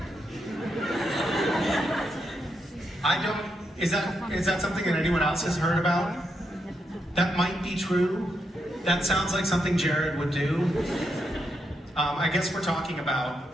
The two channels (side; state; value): both; normal; correlation 0.82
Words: I don't. Is that something that anyone else has heard about? That might be true. That sounds like something Jared would do. I guess we're talking